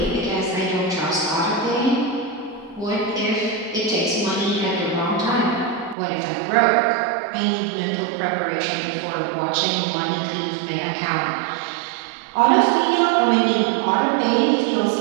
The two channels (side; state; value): left; drops out; at 6.0 s